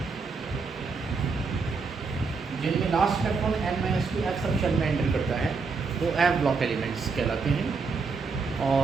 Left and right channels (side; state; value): left; quieter; 4.7 dB